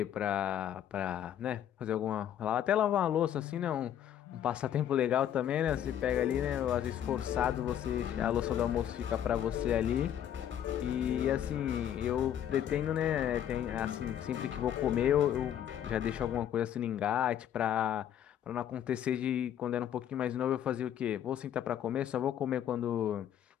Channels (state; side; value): quieter; right; 10.2 dB